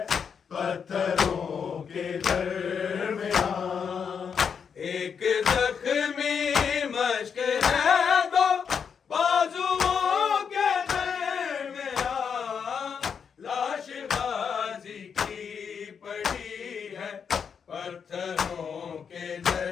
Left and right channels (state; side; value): quieter; right; 6.7 dB